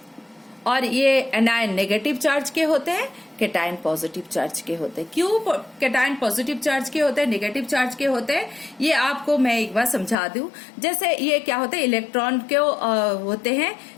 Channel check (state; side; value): drops out; right; at 10.2 s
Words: और ये एनायन नेगेटिव चार्ज के होते हैं, केटायन पॉजिटिव चार्ज के होते हैं। क्यों केटायन पॉजिटिव चार्ज के होते हैं, नेगेटिव चार्ज के होते हैं, ये आपको मैं एक बार समझा दूं। जैसे ये क्या होते हैं, इलेक्ट्रॉन के होते